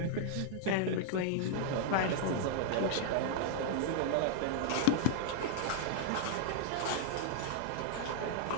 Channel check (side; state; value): both; different; correlation -0.01